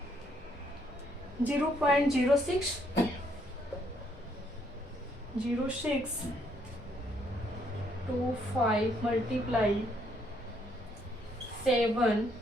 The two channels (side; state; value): both; normal; correlation 0.70